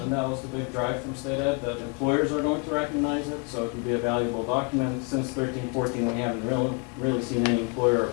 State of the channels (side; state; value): right; quieter; 32.5 dB